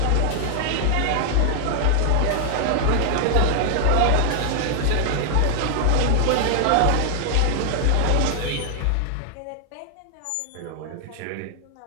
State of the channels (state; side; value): different; both; correlation 0.00